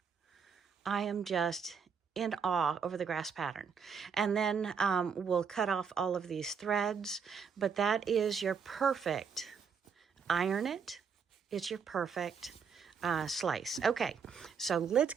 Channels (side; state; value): left; quieter; 6.3 dB